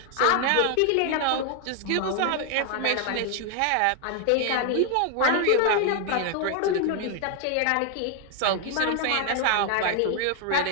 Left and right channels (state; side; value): different; both; correlation 0.00